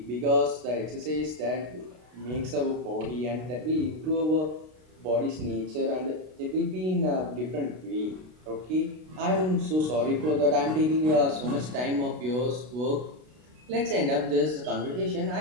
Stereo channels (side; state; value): left; late; 32 ms